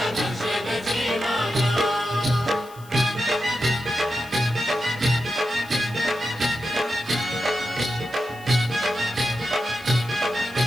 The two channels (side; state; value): left; noise; hiss, 23 dB below the sound